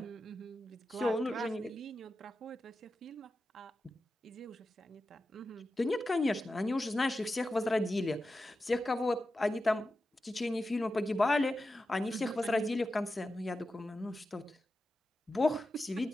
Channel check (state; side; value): normal; both; correlation 0.91